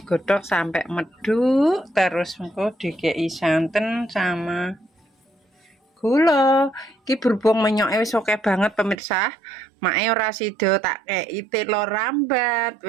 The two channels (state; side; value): drops out; left; at 9.0 s